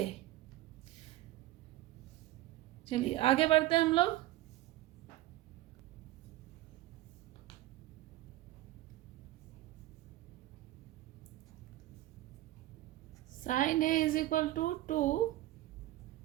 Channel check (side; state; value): left; quieter; 15.9 dB